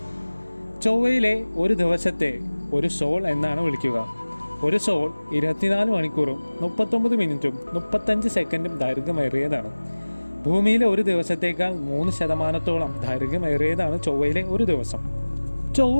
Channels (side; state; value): both; inverted; correlation -1.00